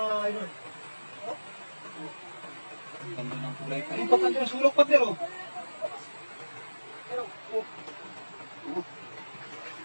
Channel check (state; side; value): inverted; both; correlation -1.00